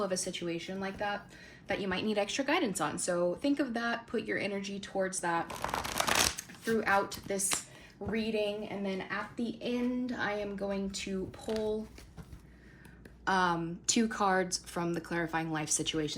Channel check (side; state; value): both; identical; correlation 1.00